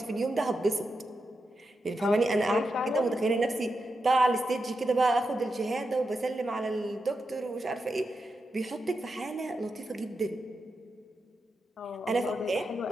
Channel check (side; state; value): both; normal; correlation 0.87